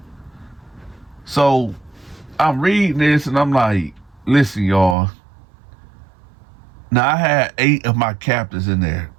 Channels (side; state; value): left; drops out; at 5.0 s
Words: So I'm reading this and I'm like, "Listen, y'all. Now I had 8 of my captors in there.